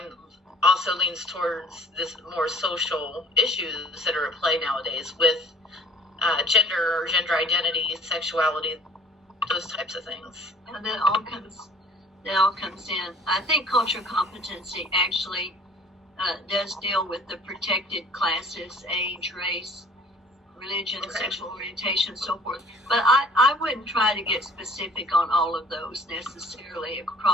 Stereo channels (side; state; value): both; normal; correlation 0.53